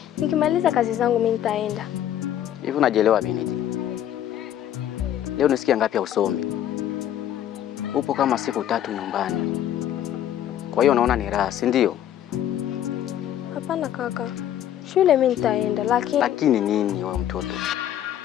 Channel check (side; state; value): right; quieter; 11.1 dB